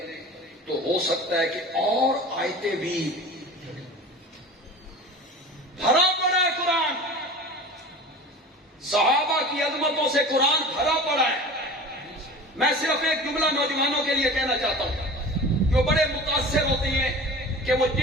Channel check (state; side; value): normal; both; correlation 0.37